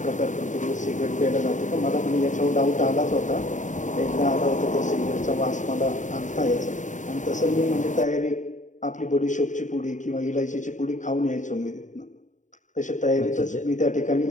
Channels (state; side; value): late; right; 0.36 ms